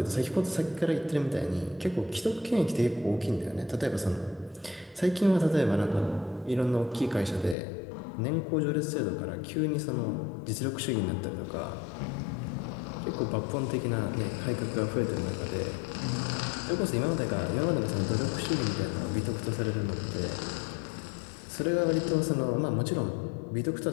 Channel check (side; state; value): right; drops out; at 7.6 s